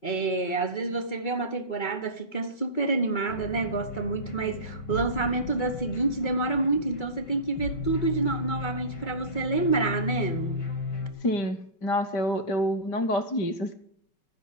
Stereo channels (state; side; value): late; right; 5.3 ms